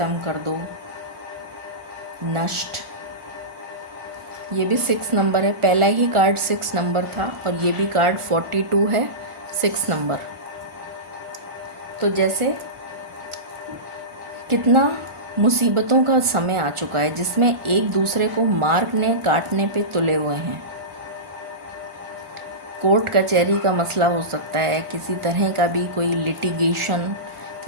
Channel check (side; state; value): left; late; 1.4 ms